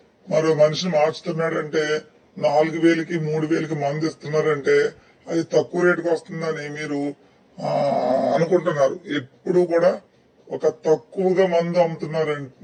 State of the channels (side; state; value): both; identical; correlation 1.00